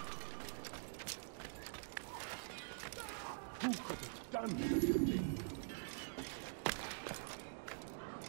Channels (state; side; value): silent; left; digital silence